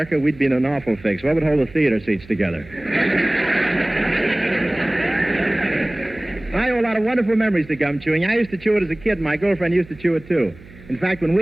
we'd be in an awful fix. What would hold the theater seats together? I owe a lot of wonderful memories to gum chewing. I used to chew it as a kid, and my girlfriend used to chew it, too. In fact, when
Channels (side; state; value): right; noise; hum, 21 dB below the sound